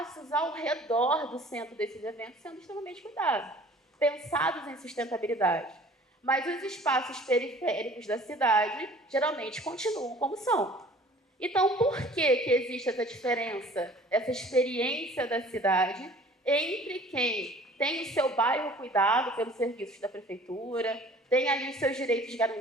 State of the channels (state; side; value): normal; both; correlation 0.49